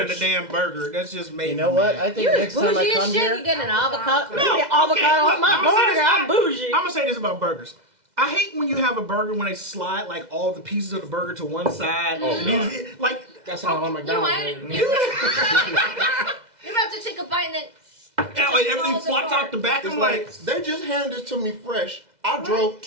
of the bitch. damn burger. That's just made You know what? I think You're next time I bougie as come shit. here, You get an avocado. No, You get avocado okay, on look, my I'ma say burger. this- I'm bougie. I'm gonna say this about burgers. I hate when you have a burger when they slide like all the pieces of the burger to one side. Like That's how on McDonald's. You're about to take a bite and then. like everything flops out the back. It's I'm like like, they just handed it to me fresh. I drove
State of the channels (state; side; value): late; left; 2.0 ms